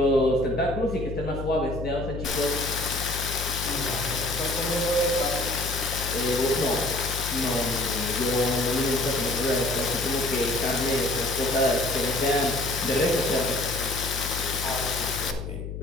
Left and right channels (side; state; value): left; noise; hum, 7 dB below the sound